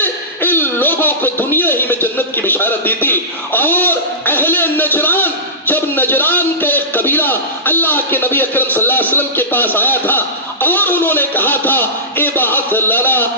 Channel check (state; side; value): normal; both; correlation -0.19